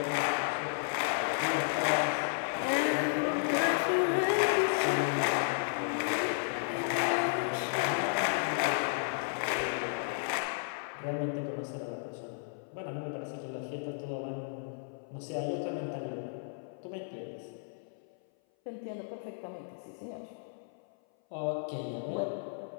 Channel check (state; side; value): silent; right; 56 dB below the other